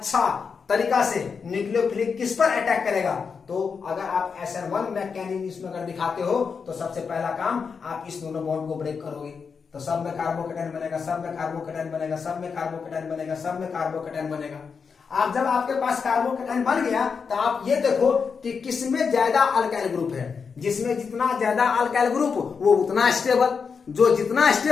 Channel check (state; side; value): quieter; right; 5.7 dB